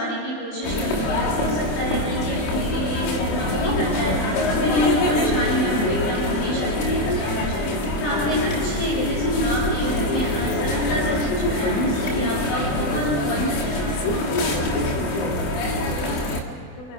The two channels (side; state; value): right; late; 27 ms